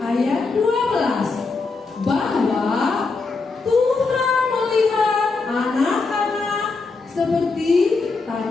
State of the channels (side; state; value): right; quieter; 4.1 dB